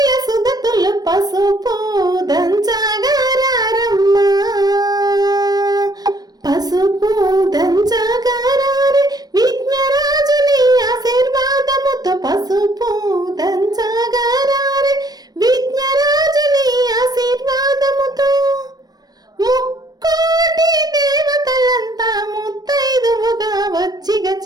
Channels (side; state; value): left; late; 0.19 ms